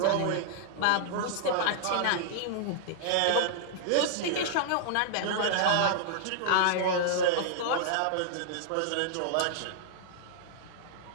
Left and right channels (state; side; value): different; both; correlation -0.01